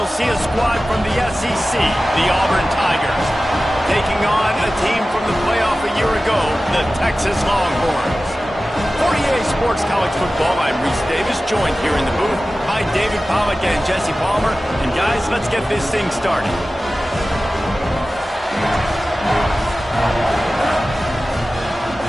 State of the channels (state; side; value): normal; both; correlation 0.96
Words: see a squad from the SEC, the Auburn Tigers, taking on a team from the playoff a year ago, the Texas Longhorns. For EA Sports College Football, I'm Reese Davis, joined here in the booth by David Pollack and Jesse Palmer. And guys, let's get this thing started.